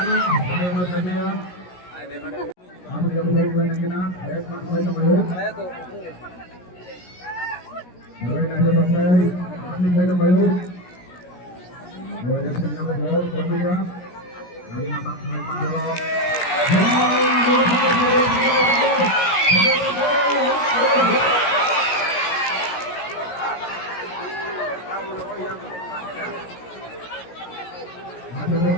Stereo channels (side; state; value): right; late; 17 ms